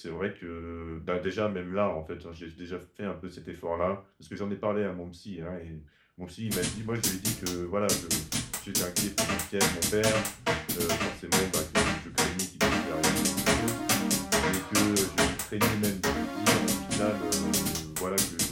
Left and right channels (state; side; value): identical; both; correlation 1.00